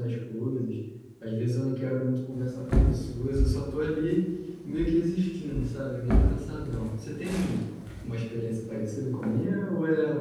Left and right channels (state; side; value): identical; both; correlation 1.00